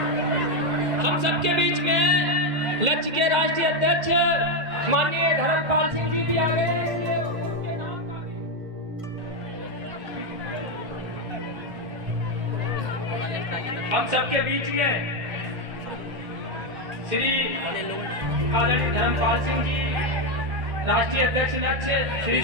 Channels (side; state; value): left; late; 2.1 ms